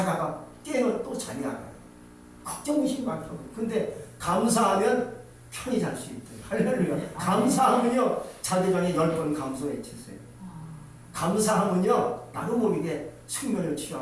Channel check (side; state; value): both; identical; correlation 1.00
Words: 깨면 또 잠이 안 와요. 걱정이 많다고. 근데 감사하면 편히 잘 수 있대요. 할렐루야. 감사하면요 자기 전에 10번 감사 외치세요. 감사하면요 나도 모르게 숙면을